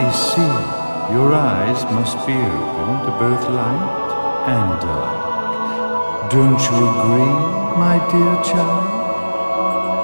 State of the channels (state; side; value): inverted; both; correlation -1.00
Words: see, your eyes must be open to both light and dark. Don't you agree, my dear child?